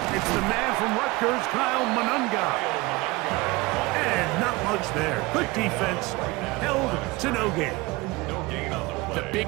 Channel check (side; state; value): left; quieter; 22.6 dB